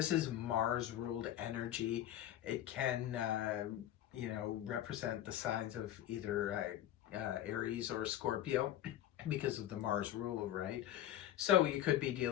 is Mars ruled energy. It can you know, represent the signs of either Aries or Scorpio because of the Mars rule, right? So you could be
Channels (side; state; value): right; quieter; 12.3 dB